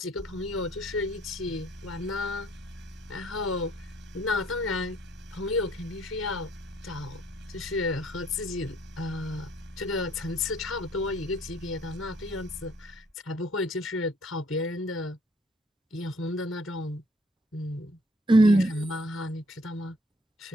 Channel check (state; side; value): normal; both; correlation 0.61